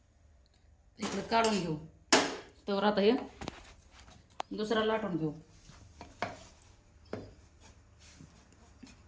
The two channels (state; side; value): identical; both; correlation 1.00